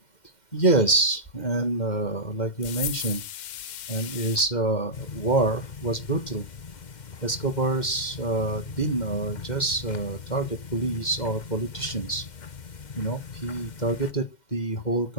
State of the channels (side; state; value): right; late; 2.1 ms